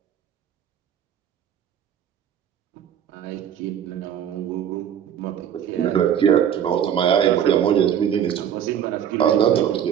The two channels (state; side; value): quieter; left; 9.2 dB